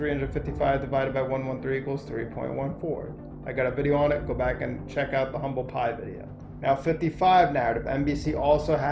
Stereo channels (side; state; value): both; identical; correlation 1.00